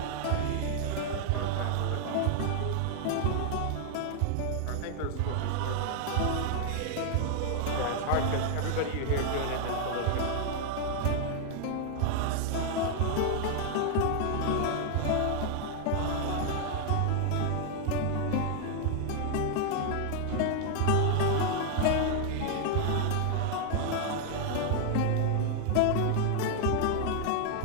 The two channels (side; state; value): both; different; correlation 0.00